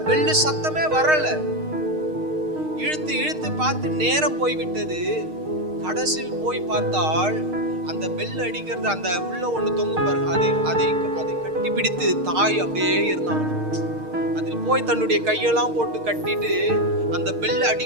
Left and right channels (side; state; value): left; late; 6.5 ms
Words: பெல்லு சத்தமே வரல. இழுத்து இழுத்து பார்த்து நேரம் போய்விட்டது. கடைசியில் போய் பார்த்தால் அந்த பெல் அடிக்கிறது, அந்த உள்ள ஒண்ணு தொங்கும் பாருங்க, அதை கட்டி பிடித்து தாய் அப்படியே இருந்தாங்க. அதில் போய் தன்னுடைய கையெல்லாம் போட்டு கட்டிட்டு அந்த பெல்